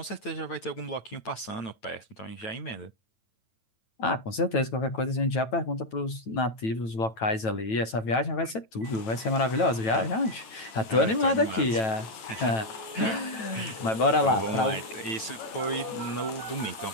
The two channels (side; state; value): right; late; 9.1 ms